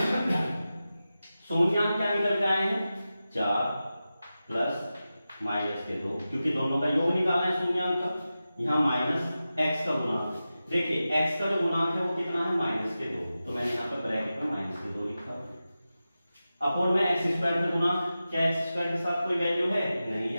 शून्यांक क्या निकल के आए हैं? 4 प्लस माइनस के 2, क्योंकि दोनों का योग निकालना है शून्यांक का। यहाँ माइनस x का गुणांक, देखिए x का जो गुणांक है वो कितना है? माइनस के 2, तो मैंने यहाँ पे ब्रैकेट में माइनस के 2 लिखा। अपॉन में x स्क्वायर का गुणांक, क्या x स्क्वायर के साथ कोई वैल्यू है? नहीं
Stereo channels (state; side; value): inverted; both; correlation -0.94